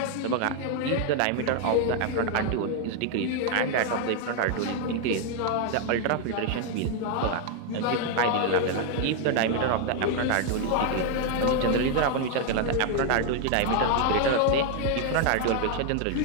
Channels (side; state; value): both; different; correlation 0.00